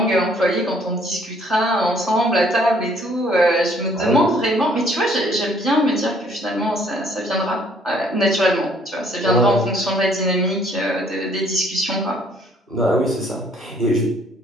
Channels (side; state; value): both; normal; correlation 0.62